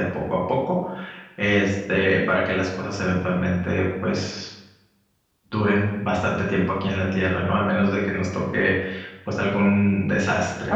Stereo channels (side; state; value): both; identical; correlation 1.00